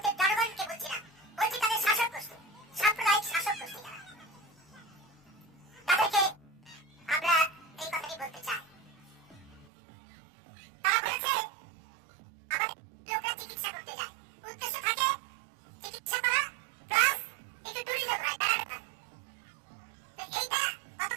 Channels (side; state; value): left; drops out; at 9.7 s